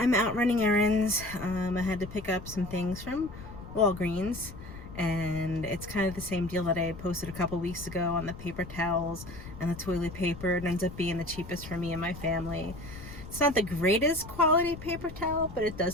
out running errands. I had to pick up some things from Walgreens. And it's kind of the same deal that I posted a couple weeks ago on the paper towels and the toilet paper. It ends up being the cheapest for me and my family. It's not the greatest quality paper towel, but it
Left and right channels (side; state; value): left; noise; rumble, 13 dB below the sound